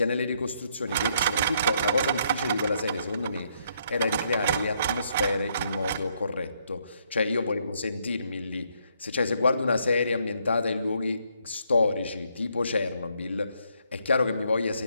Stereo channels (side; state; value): both; inverted; correlation -0.72